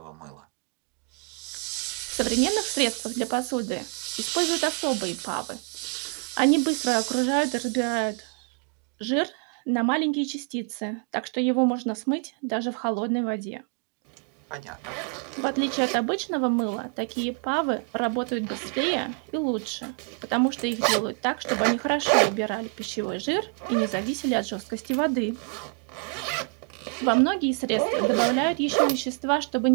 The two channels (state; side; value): quieter; left; 39.0 dB